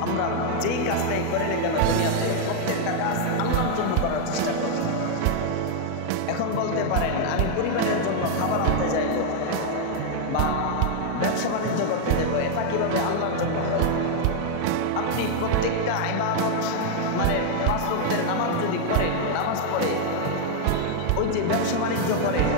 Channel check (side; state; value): both; different; correlation 0.00